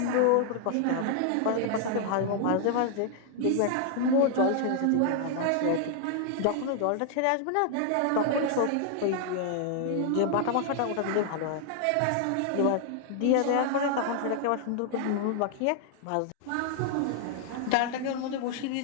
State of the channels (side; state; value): both; different; correlation 0.00